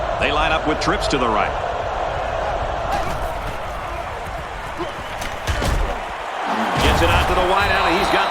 They line up with trips to the right. Gets it out to the wideout, and he's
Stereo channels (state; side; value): identical; both; correlation 1.00